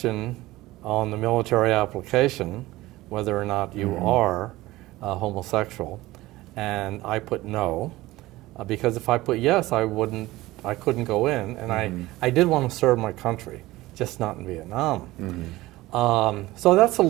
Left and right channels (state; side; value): quieter; left; 18.2 dB